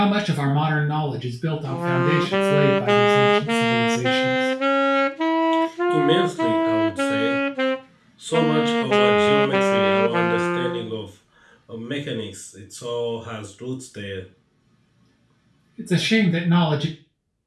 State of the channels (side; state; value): both; identical; correlation 1.00